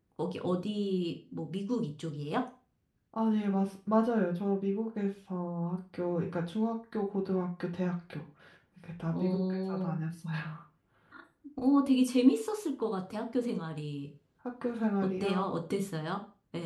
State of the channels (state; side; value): identical; both; correlation 1.00